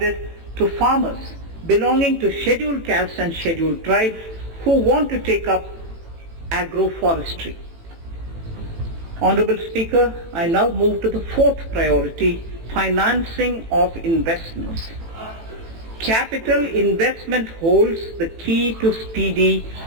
to farmers belonging to scheduled castes and scheduled tribes who want to take up agroforestry. Honorable Speaker, I now move to the 4th priority, financing of investments. Capital investment holds the key to speedy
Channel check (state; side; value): late; left; 18 ms